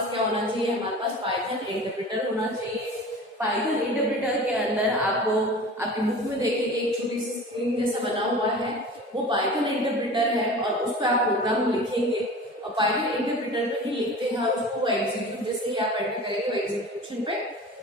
क्या होना चाहिए, हमारे पास पाइथन इंटरप्रेटर होना चाहिए। पाइथन इंटरप्रेटर के अंदर आपको आपकी बुक में देखेंगे एक छोटी सी स्क्रीन जैसा बना हुआ है, वो पाइथन इंटरप्रेटर है और उस पर आप प्रोग्राम लिखेंगे और पाइथन इंटरप्रेटर पे ही लिखते हैं और उसको एग्जीक्यूट जैसे ही आप एंटर करेंगे वो एग्जीक्यूशन पे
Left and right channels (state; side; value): normal; both; correlation 0.38